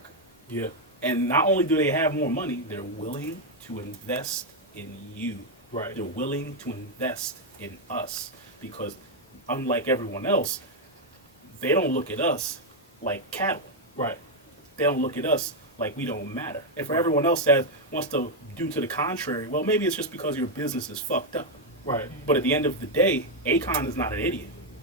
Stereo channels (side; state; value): both; normal; correlation 0.01